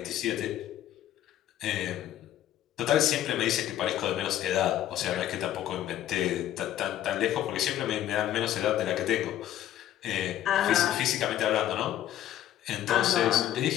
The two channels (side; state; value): right; quieter; 12.1 dB